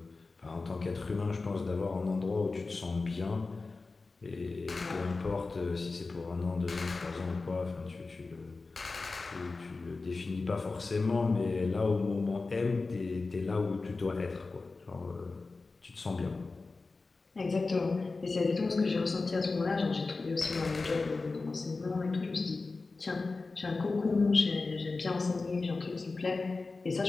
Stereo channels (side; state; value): right; quieter; 3.8 dB